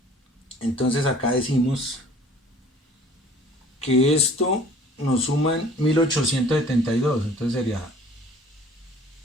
Entonces acá decimos que esto nos suman 1872. Entonces sería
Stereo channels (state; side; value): normal; both; correlation 0.51